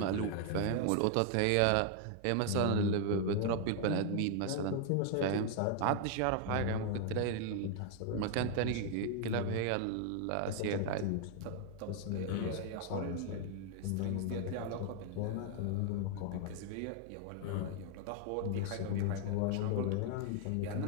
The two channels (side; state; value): both; different; correlation 0.00